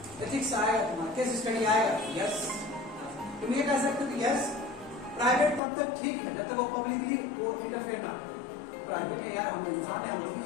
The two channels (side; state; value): right; drops out; at 5.6 s